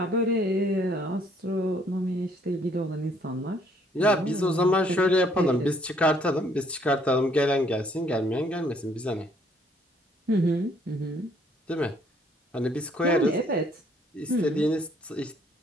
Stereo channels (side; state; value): both; normal; correlation 0.65